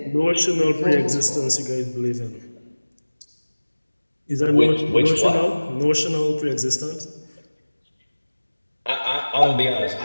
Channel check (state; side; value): inverted; both; correlation -1.00